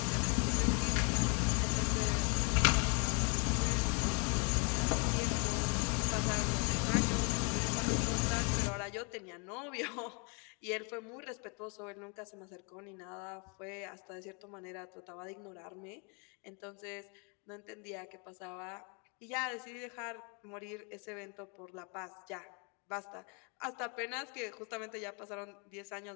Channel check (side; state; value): right; quieter; 35.4 dB